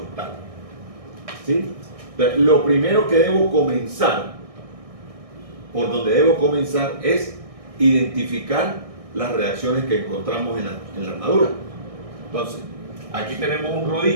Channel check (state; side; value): late; left; 1.6 ms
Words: ¿Sí? Entonces, lo primero que debo comenzar, por donde debo comenzar, es identificar las reacciones que encontramos en la armadura. Entonces, aquí tenemos un